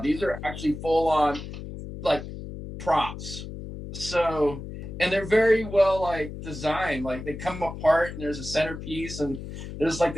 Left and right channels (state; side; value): noise; left; hum, 10 dB below the sound